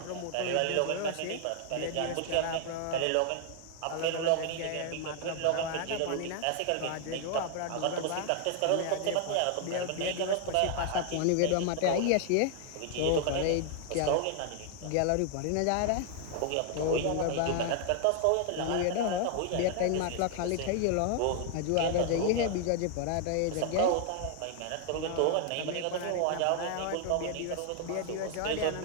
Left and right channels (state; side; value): different; both; correlation 0.00